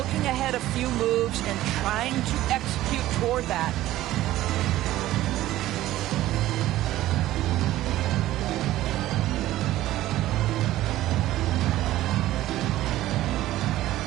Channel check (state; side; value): quieter; left; 15.0 dB